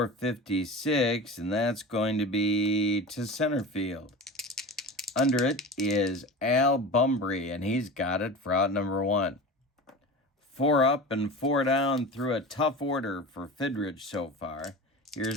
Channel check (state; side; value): normal; both; correlation 0.32